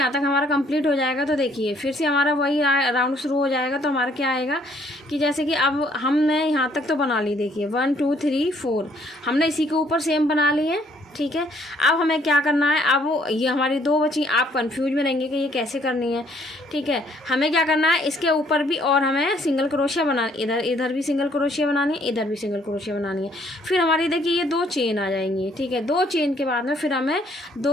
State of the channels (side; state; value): both; normal; correlation 0.65